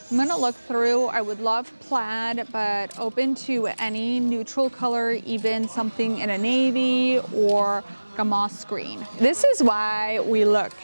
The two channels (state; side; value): inverted; both; correlation -1.00